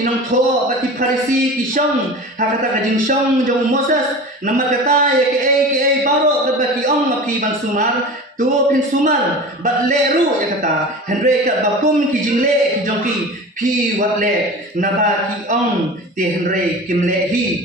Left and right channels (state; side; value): normal; both; correlation 0.34